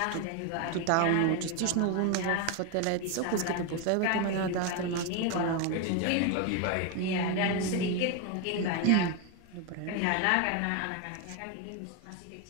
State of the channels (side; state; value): both; different; correlation 0.02